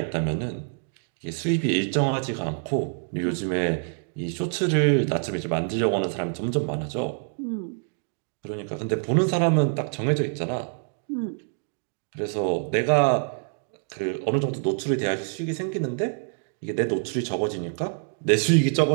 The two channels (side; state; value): left; silent; 61 dB below the other